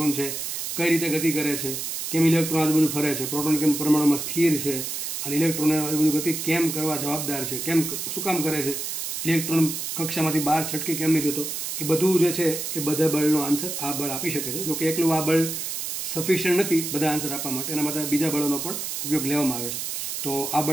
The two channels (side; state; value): right; noise; hiss, 4 dB below the sound